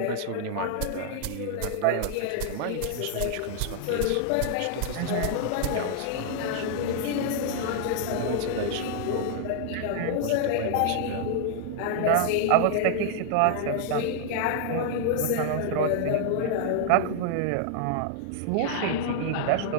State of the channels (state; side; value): different; both; correlation 0.00